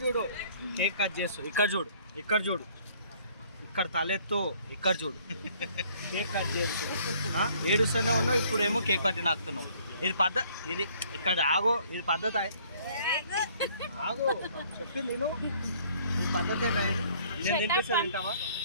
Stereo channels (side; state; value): both; inverted; correlation -0.59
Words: చూడు, కేక్ కట్ చేస్తూ ఇక్కడ చూడు, ఇక్కడ చూడు, ఇక్కడ తలెత్తు, ఇక్కడ చూడు, కేక్ కట్ చేస్తూ ఏడుస్తూనే ఉన్నావు. ఇప్పుడేమో కేక్ పట్టి నాకుతున్నావు. ఇది పద్ధతి, ఇది ఇక్కడ ఆగో, ఇది పద్ధతి. ఆగో చెప్పింది నేను, ఈ పద్ధతే లేదు. నేను తినిపిస్తా, తింటావా?